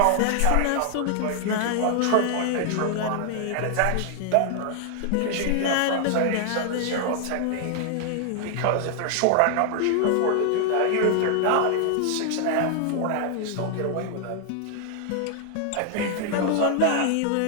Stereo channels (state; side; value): different; both; correlation 0.00